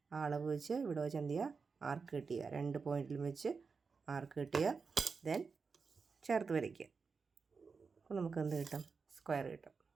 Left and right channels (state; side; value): quieter; left; 5.0 dB